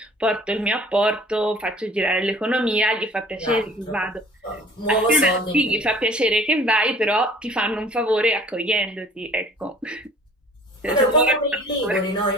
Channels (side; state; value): both; normal; correlation 0.50